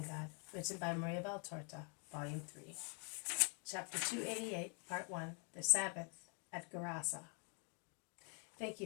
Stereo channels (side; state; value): right; quieter; 38.7 dB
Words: God, written by Maria Valtorta, Volume 3, Chapter 288, Part 1, The Sabbath at Gerasa. Thank